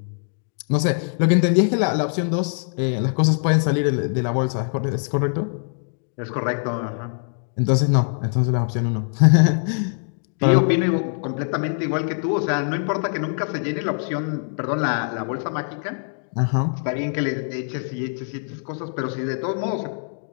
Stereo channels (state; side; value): silent; right; digital silence